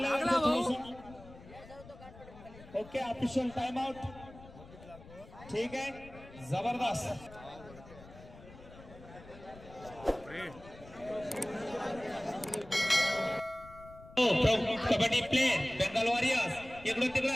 Okay official time out. ठीक आहे जबरदस्त. Kabaddi player Bengal warriors. इकडून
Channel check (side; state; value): left; noise; rumble, 19 dB below the sound